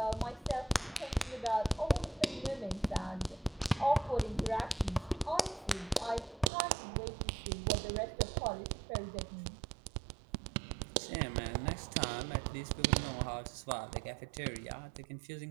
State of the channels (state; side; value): drops out; left; at 6.5 s